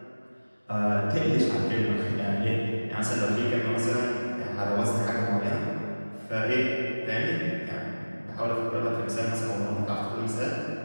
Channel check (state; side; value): inverted; both; correlation -1.00